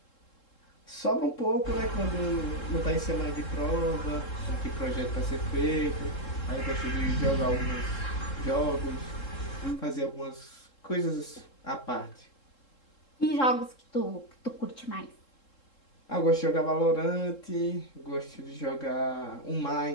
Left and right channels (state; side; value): late; right; 3.7 ms